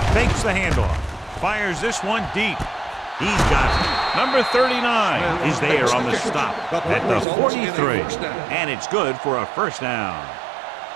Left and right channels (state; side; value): drops out; left; at 7.2 s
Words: fakes the handoff, fires this one deep. He's got it. Number 39 is there on the stop at the 43, and it's good for a first down.